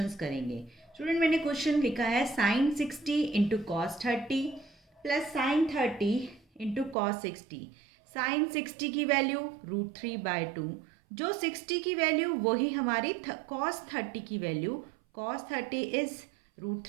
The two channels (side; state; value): left; drops out; at 7.0 s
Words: करेंगे। स्टूडेंट, मैंने क्वेश्चन लिखा है sine 60 into cos 30 plus sine 30 into cos 60। Sine 60 की वैल्यू √3/2, जो 60 की वैल्यू वही हमारी कॉस 30 की value. Cos 30 is